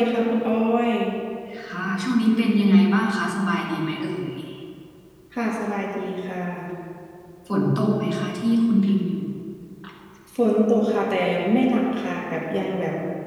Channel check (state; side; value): identical; both; correlation 1.00